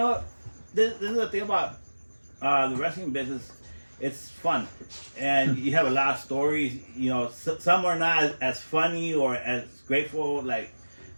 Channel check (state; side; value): inverted; both; correlation -1.00